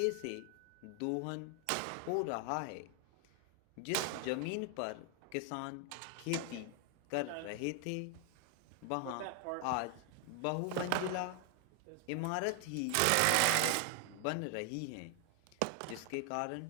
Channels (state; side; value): different; both; correlation 0.00